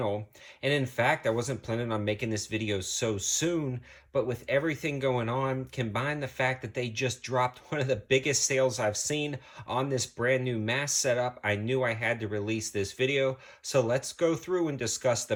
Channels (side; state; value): both; identical; correlation 1.00